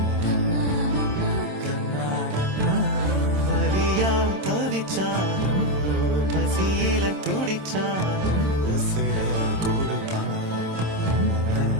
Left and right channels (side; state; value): left; late; 27 ms